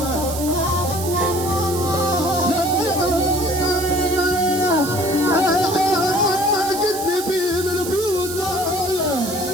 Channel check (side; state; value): right; noise; hiss, 8 dB below the sound